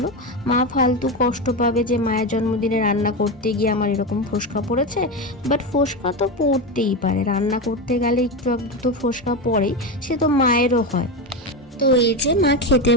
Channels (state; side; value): normal; both; correlation 0.16